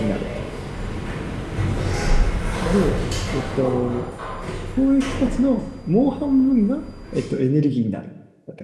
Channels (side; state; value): both; identical; correlation 1.00